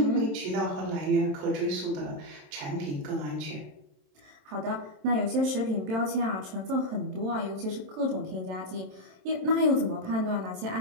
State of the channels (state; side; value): late; left; 27 ms